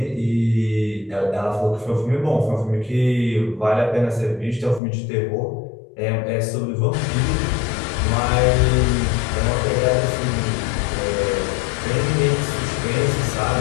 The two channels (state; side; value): drops out; right; at 4.8 s